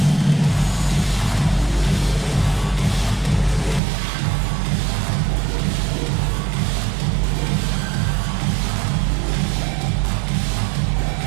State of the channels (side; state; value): left; drops out; at 3.8 s